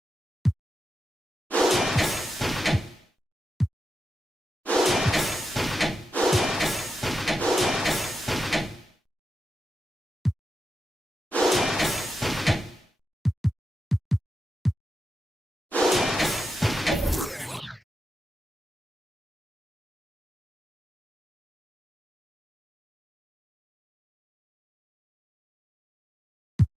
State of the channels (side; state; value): both; normal; correlation 0.88